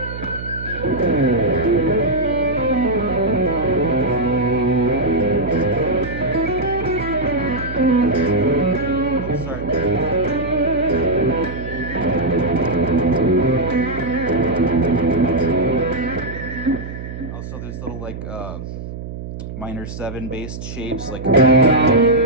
also there's little like minor 7 based shapes, like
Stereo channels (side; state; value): right; noise; hum, 9 dB below the sound